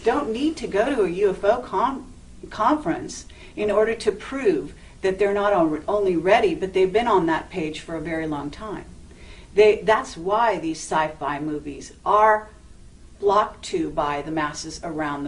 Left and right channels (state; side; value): identical; both; correlation 1.00